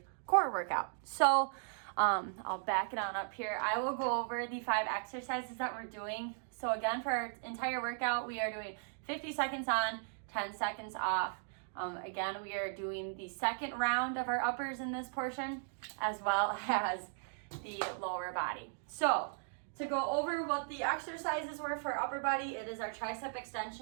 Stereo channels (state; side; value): silent; left; digital silence